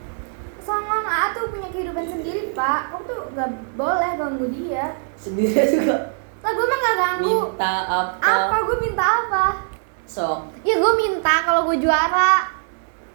Soalnya A tuh punya kehidupan sendiri Pak. Kamu tuh gak boleh ganggu dia. Sendiri juga. Lah gue mah gak ganggu. Minta apa? Apa? Gue minta apa? Sok. Ya gue minta kalau gue juara.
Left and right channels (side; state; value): left; silent; digital silence